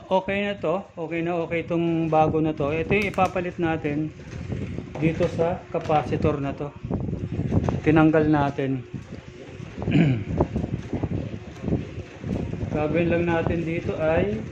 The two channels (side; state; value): both; identical; correlation 1.00